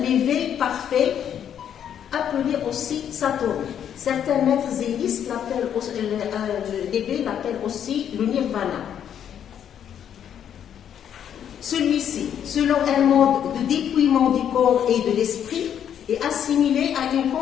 l'éveil parfait, appelé aussi Satori. Certains maîtres zénistes l'éveil l'appellent aussi le nirvana. Celui-ci, selon un mode de dépouillement du corps et de l'esprit, est assimilé à une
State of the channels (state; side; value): quieter; right; 9.2 dB